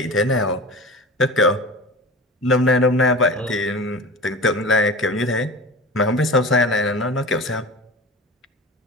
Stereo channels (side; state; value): both; normal; correlation 0.33